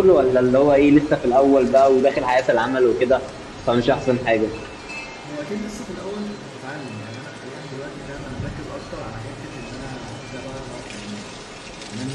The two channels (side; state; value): both; identical; correlation 1.00